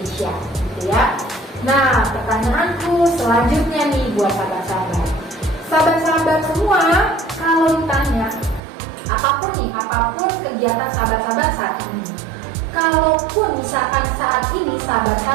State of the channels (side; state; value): left; drops out; at 8.6 s